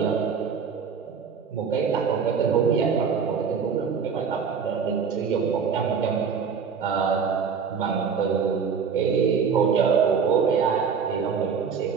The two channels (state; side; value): quieter; left; 6.3 dB